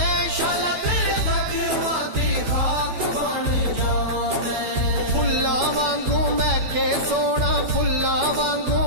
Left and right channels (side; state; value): left; late; 12 ms